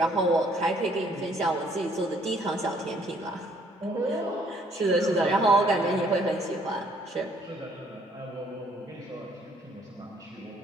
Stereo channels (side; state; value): both; normal; correlation 0.64